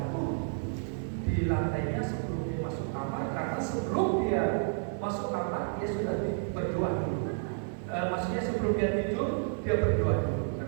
di lantainya sebelum dia masuk kamar, karena sebelum dia masuk kamar dia sudah berdoa dulu. Maksudnya sebelum dia tidur dia berdoa dulu,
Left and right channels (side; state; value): left; silent; digital silence